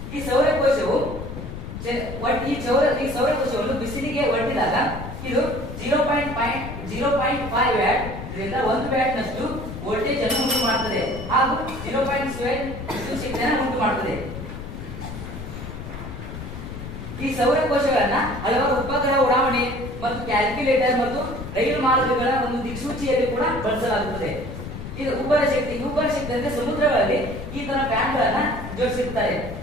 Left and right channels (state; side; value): noise; left; rumble, 9 dB below the sound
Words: ಈ ಸೌರಕೋಶವು ಈ ಸೌರಕೋಶವನ್ನು ಬಿಸಿಲಿಗೆ ಒಡ್ಡಿದಾಗ ಇದು 0.5 ವ್ಯಾಟ್ ಇದರಿಂದ 1 ವ್ಯಾಟ್ ನಷ್ಟು ವೋಲ್ಟೇಜ್ ಅನ್ನು ಉಂಟು ಮಾಡುತ್ತದೆ ಹಾಗೂ 0.7 ವಿದ್ಯುತ್ ಶಕ್ತಿಯನ್ನು ಉಂಟು ಮಾಡುತ್ತದೆ. ಈ ಸೌರಕೋಶಗಳನ್ನ ಹಲವಾರು ಉಪಗ್ರಹ ಉಡಾವಣೆ ಮತ್ತು ಕ್ಯಾಲ್ಕುಲೇಟರ್ ಮತ್ತು ರೈಲು ಮಾರ್ಗಗಳ ಒಂದು ದಿಕ್ಸೂಚಿಯಲ್ಲಿ ಕೂಡ ಬಳಸಲಾಗುತ್ತದೆ. ಇದು ಉಬ್ಬರ ಶಕ್ತಿ ಅಂದ್ರೆ ಸಮುದ್ರಗಳಲ್ಲಿ ಈ ತರ ಫ್ಯಾನ್ಗಳನ್ನ ಜೋಡಿಸಿರ್ತಾರೆ.